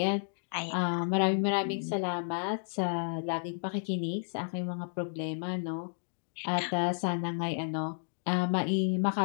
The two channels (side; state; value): right; silent; digital silence